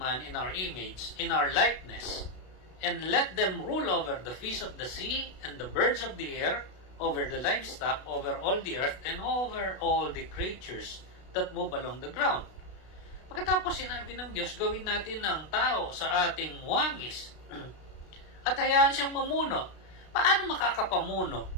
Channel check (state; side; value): late; right; 32 ms